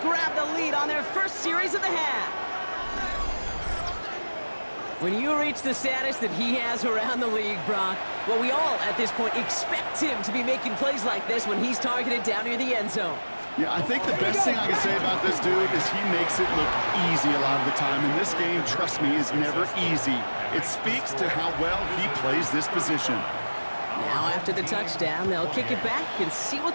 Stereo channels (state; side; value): inverted; both; correlation -1.00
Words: the lead on their first series of the half. When you reach the status that he has around the league, Brock, well, we all, at this point, expect him to be making plays like this when he's targeted down near the end zone. Yeah, I think the best thing I can say about this dude is he makes it look easy a lot of the time. And this game, trust me, is never easy. It speaks to how well he plays this position. Now, after the touchdown, they'll kick it back and see what